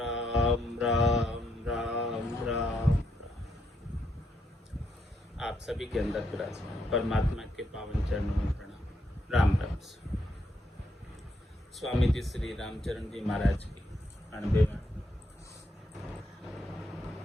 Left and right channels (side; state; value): both; normal; correlation 0.77